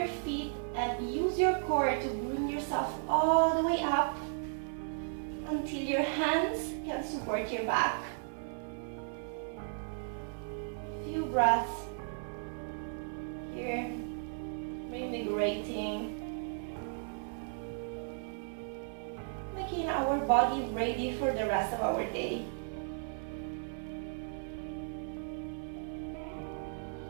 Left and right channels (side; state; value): left; silent; 54 dB below the other